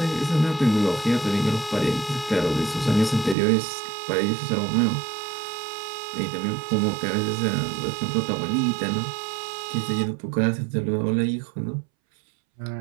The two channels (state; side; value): drops out; left; at 3.4 s